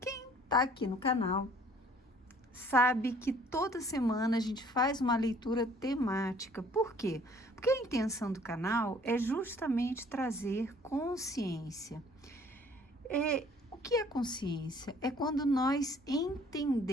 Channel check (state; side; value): normal; both; correlation 0.56